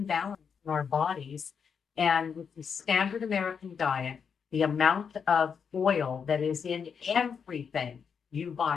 balance in our bodies. And with the standard American diet, the amount of oil that is in everything you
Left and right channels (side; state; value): right; quieter; 6.6 dB